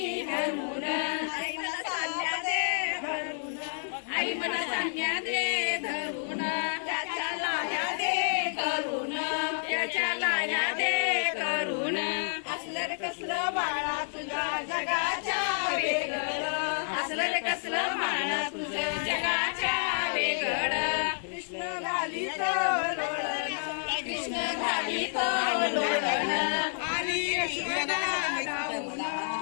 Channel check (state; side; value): silent; right; digital silence